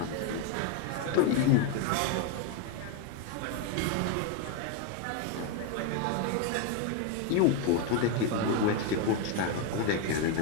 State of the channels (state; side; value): different; both; correlation 0.02